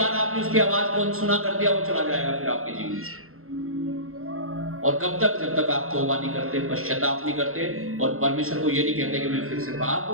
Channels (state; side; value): late; left; 0.62 ms